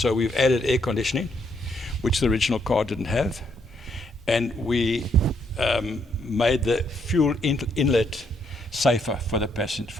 we've added air conditioning, which the original car didn't have, and we made the fuel inlet safer for the passenger,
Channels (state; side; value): normal; both; correlation 0.73